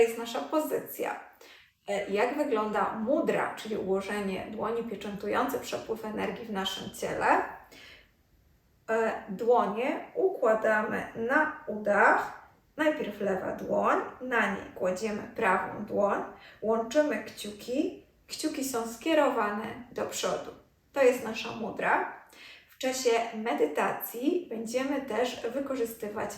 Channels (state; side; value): identical; both; correlation 1.00